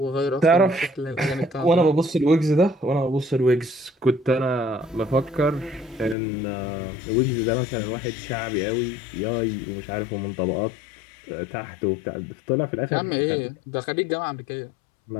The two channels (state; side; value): drops out; right; at 6.2 s